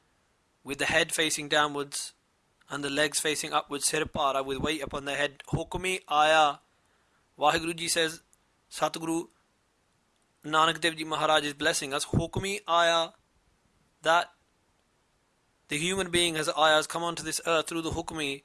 with the head facing downwards, and the legs facing upwards, sirpara, with weight upon the head. Hukmi aya. Vaheguru Ji says, Satguru Nanak Dev Ji Maharaj is blessing us. Hukmi aya, that the human being has ayahs come onto this earth through the hukmi,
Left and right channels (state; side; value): identical; both; correlation 1.00